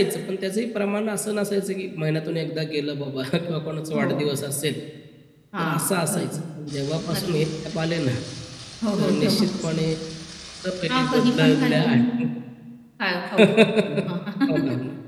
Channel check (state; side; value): identical; both; correlation 1.00